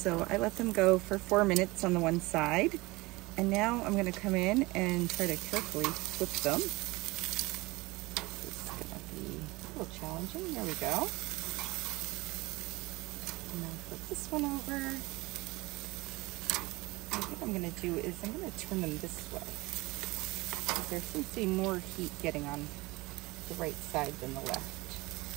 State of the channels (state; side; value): quieter; left; 22.2 dB